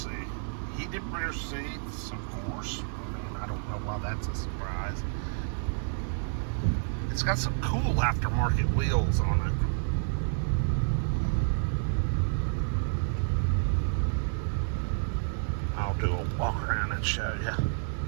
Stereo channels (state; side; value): silent; left; 58 dB below the other